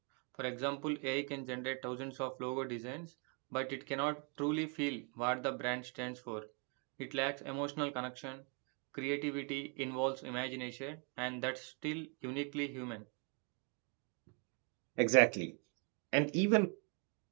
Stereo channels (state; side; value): quieter; left; 36.8 dB